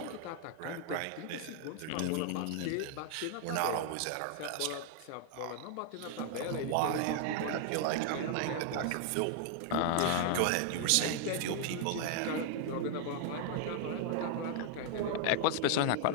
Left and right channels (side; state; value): both; different; correlation 0.00